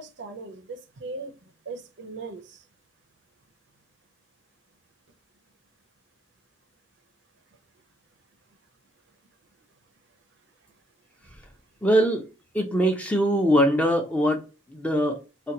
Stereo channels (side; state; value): both; normal; correlation 0.71